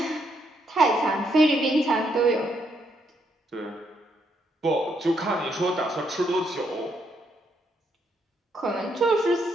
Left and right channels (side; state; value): both; normal; correlation 0.75